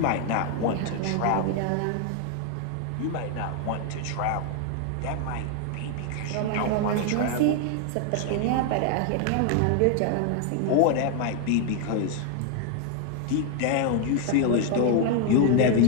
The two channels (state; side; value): different; both; correlation 0.00